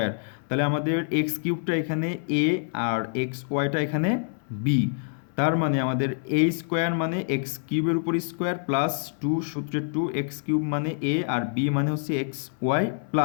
তাহলে আমাদের এক্স কিউবটা এখানে এ আর এক্স ওয়াইটা এখানে বি। তার মানে আমাদের এ স্কোয়ার মানে এক্স কিউবের উপর স্কোয়ার প্লাস টু সূত্রের টু, এক্স কিউব মানে এ আর বি মানে হচ্ছে x y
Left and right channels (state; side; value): silent; right; 60 dB below the other